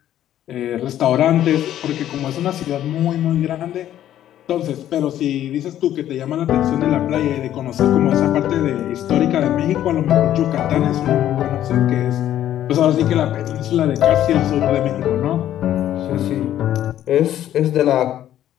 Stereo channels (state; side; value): quieter; right; 11.8 dB